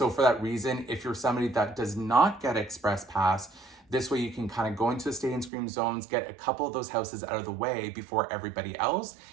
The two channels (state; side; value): drops out; left; at 5.5 s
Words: for that reason, if you're somebody that does not get Express Pass, this way you can kind of go into the Stay and Scream zones, get a couple of those houses out of the way before everybody else,